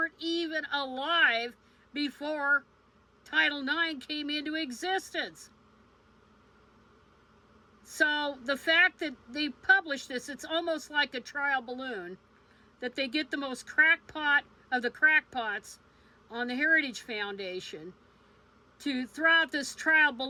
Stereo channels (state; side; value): identical; both; correlation 1.00